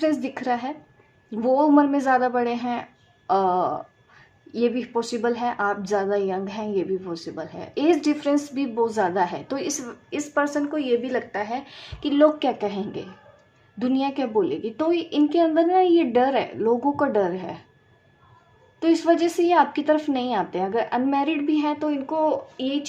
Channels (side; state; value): both; identical; correlation 1.00